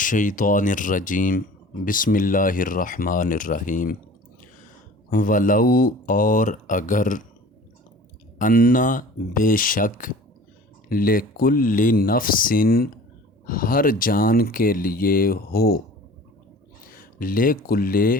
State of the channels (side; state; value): both; normal; correlation 0.44